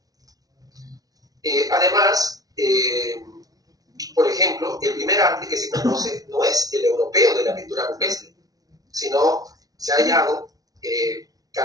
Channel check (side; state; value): left; late; 0.18 ms